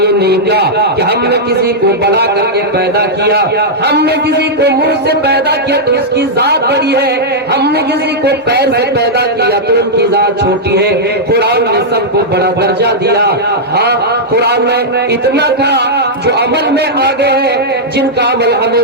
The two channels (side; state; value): both; normal; correlation -0.07